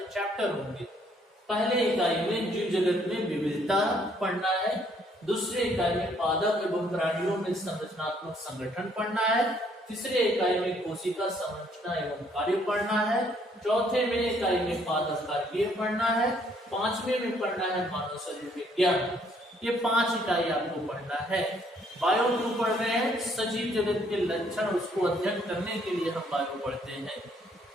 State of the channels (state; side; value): normal; both; correlation 0.66